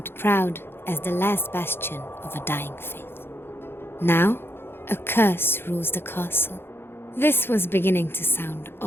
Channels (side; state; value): right; late; 0.11 ms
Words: proud as the last bastion of a dying faith. Now, a curse rules the castle. This was beginning to sound